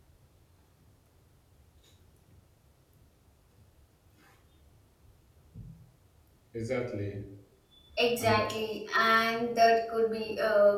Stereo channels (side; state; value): both; identical; correlation 1.00